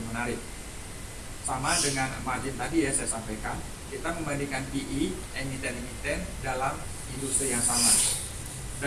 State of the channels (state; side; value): identical; both; correlation 1.00